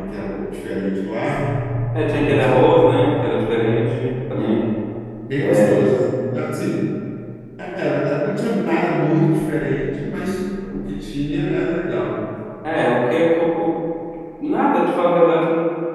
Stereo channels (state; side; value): identical; both; correlation 1.00